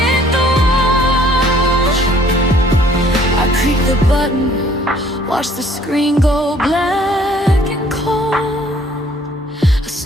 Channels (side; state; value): both; normal; correlation 0.59